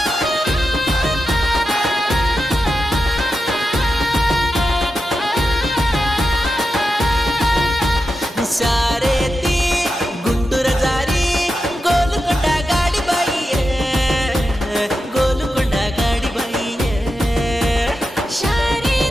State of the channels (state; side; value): normal; both; correlation 0.90